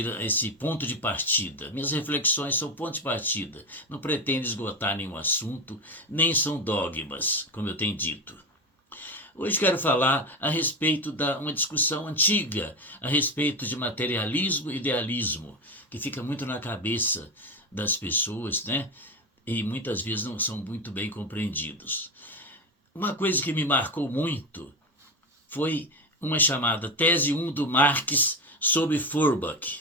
esse ponto de partida. Minhas reflexões são ponto de partida. Não pretendo esgotar nenhum assunto, nem são dogmas, como eu tenho dito. Hoje quero falar a respeito de uma discussão antiga, a respeito de materialismo e idealismo, que fica muito na cabeça das pessoas, né? E muitas vezes não são muito bem compreendidos. Uma coisa que me marcou muito foi uma chamada Tese 1 do Marx sobre Feuerbach.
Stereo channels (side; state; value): both; normal; correlation 0.17